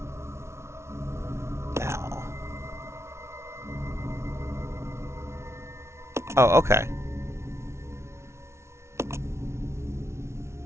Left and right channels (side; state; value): left; late; 0.13 ms